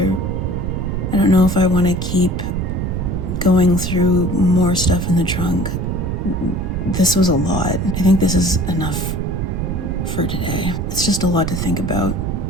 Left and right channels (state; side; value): noise; right; rumble, 2 dB below the sound